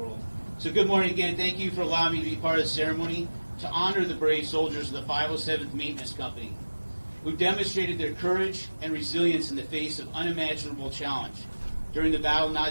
So good morning again. Thank you for allowing me to be part of the ceremony to honor the brave soldiers of the 507th Maintenance Company, who demonstrated their courage and resilience in the face of unimaginable challenge during the Battle of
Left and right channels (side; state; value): both; inverted; correlation -1.00